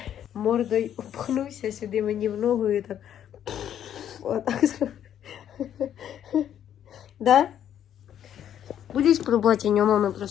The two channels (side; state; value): right; quieter; 10.1 dB